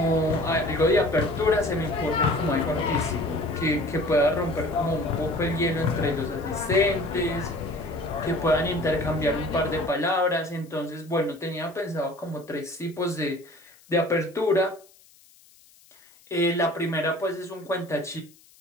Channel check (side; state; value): left; noise; hiss, 28 dB below the sound